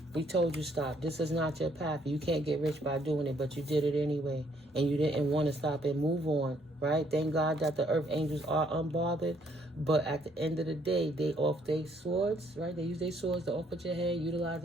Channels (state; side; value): normal; both; correlation 0.68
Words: We told you stop. This is not your path. You can't get rich by doing it, but you did it anyway. And you didn't want to stop and move on, right? Thank God that the earth angels are unbothered. But at the end of the day, they off their swords, right? They use their swords to off at your head, utilize